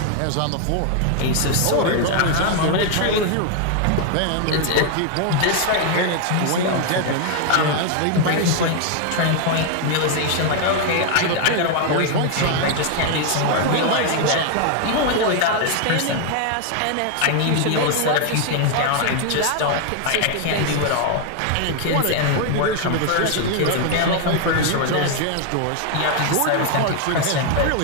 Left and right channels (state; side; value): different; both; correlation 0.00